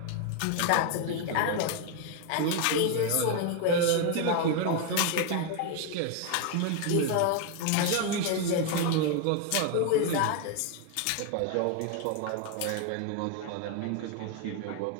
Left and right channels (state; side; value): different; both; correlation 0.01